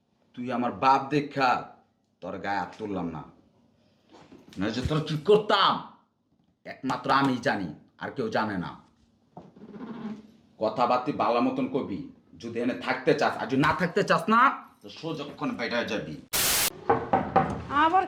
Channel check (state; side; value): identical; both; correlation 1.00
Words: তুই আমার বাপ দেখা তোর গায়ে হাত তুললাম না না যে তোর কি করতাম একমাত্র আমি জানি আর কেউ জানে না কথাবার্তি ভালো মতন কবি যদি এনে থাকতে চাস আর যদি না থাকতে চাস না তো সোজক্ষণ বেটা যাবি আবার